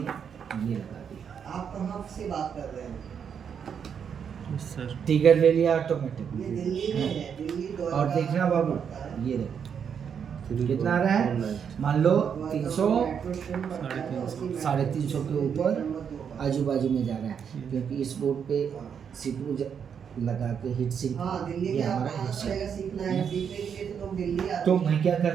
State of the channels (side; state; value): left; quieter; 7.4 dB